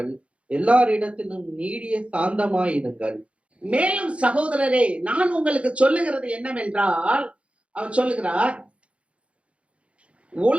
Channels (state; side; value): late; left; 0.061 ms